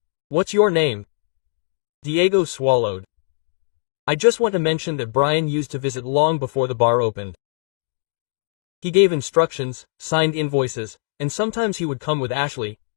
"What's your name?" Diego swallowed. "I just want to mention that Brian used to visit long before the bar opened. He gave instructions, signed invoices, and sometimes he would come with Ashley,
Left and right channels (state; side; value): silent; right; 60 dB below the other